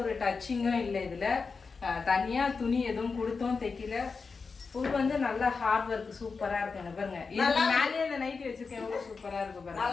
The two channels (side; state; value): right; quieter; 4.8 dB